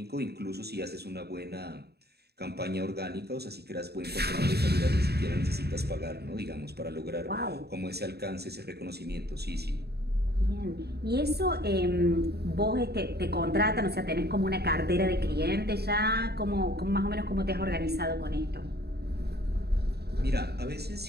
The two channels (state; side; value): late; left; 0.47 ms